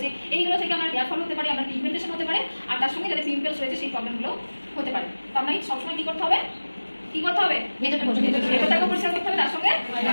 এইগুলো থেকে আপনার হেয়ার ফল হতে পারে, আপনার পিগমেন্টেশন হতে পারে, আর তার সঙ্গে যাদের পিম্পলস রয়েছে সেই প্রবলেমগুলো হতে পারে। তো আপনাকে সবসময় কি করতে হবে? ভেতরটাকে পরিষ্কার করতে হবে, তার সঙ্গে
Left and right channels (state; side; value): inverted; both; correlation -1.00